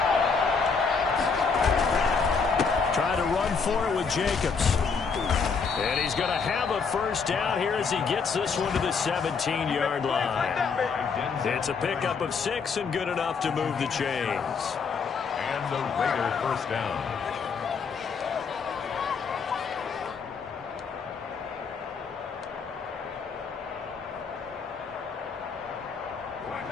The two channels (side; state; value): right; quieter; 5.4 dB